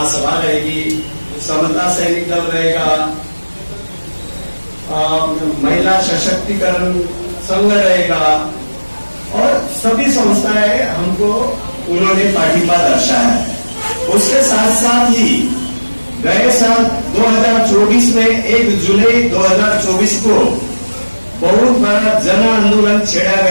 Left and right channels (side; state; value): both; inverted; correlation -1.00